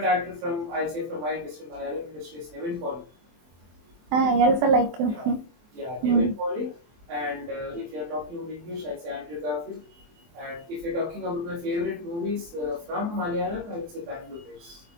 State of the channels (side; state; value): left; late; 24 ms